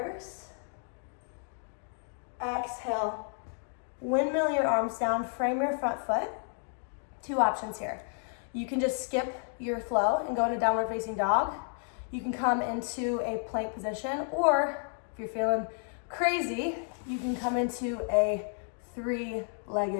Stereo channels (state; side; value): silent; right; 57 dB below the other